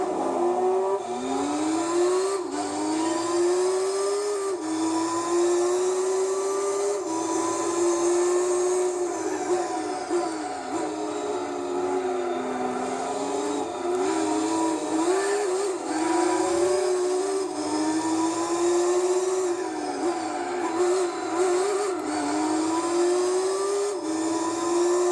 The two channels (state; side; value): identical; both; correlation 1.00